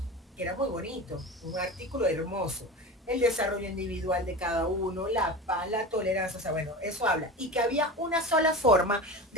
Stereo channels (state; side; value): normal; both; correlation 0.29